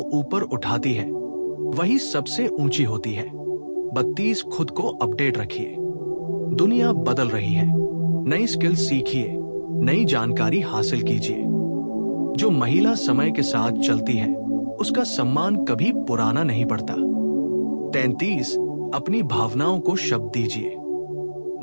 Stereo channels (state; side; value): inverted; both; correlation -1.00